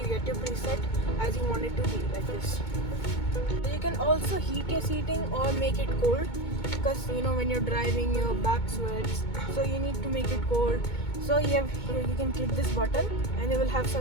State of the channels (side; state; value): right; late; 2.2 ms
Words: get your preset as you want it to be, like this. So you can also heat your seating or make it cold, because you know when you're driving your back sweats, so you need to make it cold. So you have here, you can click this button and you will have